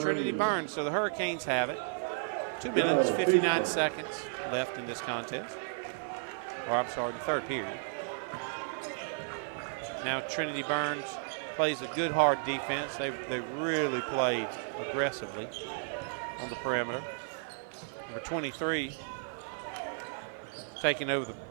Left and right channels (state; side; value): silent; left; 55 dB below the other